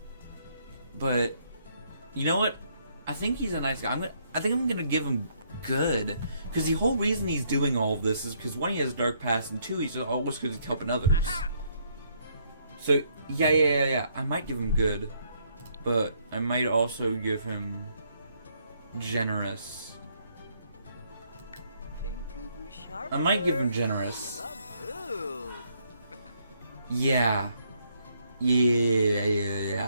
but you know what? I think he's a nice guy. I think I'm gonna give him good, because the whole reason he's doing all of this is because one, he has a dark past, and two, he's always because he's helping others. So yeah. I might give him good, but I might also give him generous. I might give him generous. Yeah.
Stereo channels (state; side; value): inverted; both; correlation -0.70